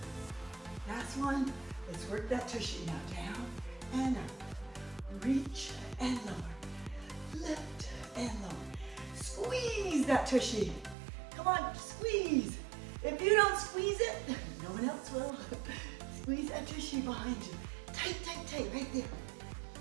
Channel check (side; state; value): left; drops out; at 11.0 s